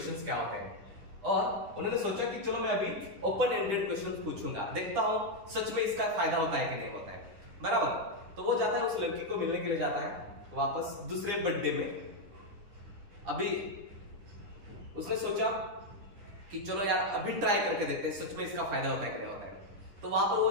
क्या होते हैं। और उन्होंने सोचा कि चलो मैं अभी ओपन एंडेड क्वेश्चंस पूछूंगा, देखता हूं सच में इसका फायदा होता है कि नहीं होता है। बराबर, तो वो जाता है उस लड़की को मिलने के लिए जाता है वापस दूसरे बर्थडे में। अभी उसने सोचा कि चलो यार अभी ट्राई करके देखते हैं सच में इसका फायदा होता है कि नहीं होता है। तो वहां पर वो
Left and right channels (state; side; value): late; left; 10 ms